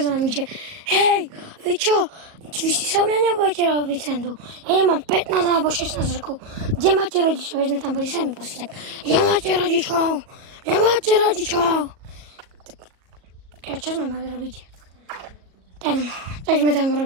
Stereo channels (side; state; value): left; late; 37 ms